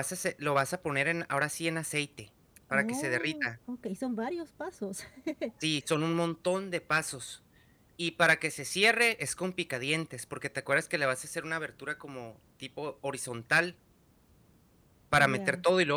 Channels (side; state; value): both; identical; correlation 1.00